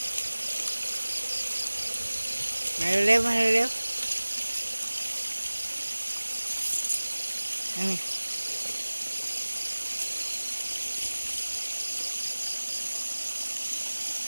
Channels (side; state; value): both; inverted; correlation -1.00